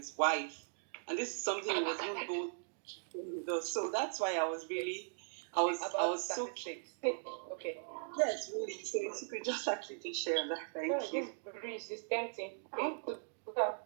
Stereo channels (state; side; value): silent; left; digital silence